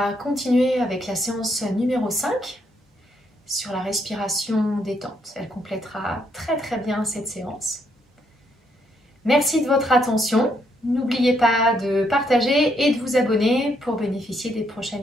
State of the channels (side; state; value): both; normal; correlation 0.74